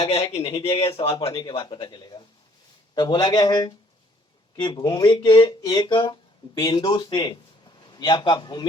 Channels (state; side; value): normal; both; correlation 0.62